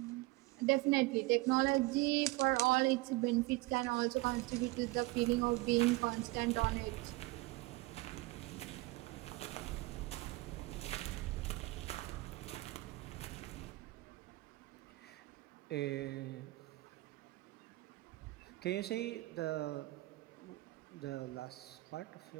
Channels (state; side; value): quieter; left; 21.2 dB